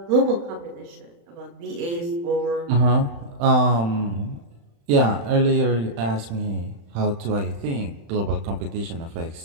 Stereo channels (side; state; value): left; late; 35 ms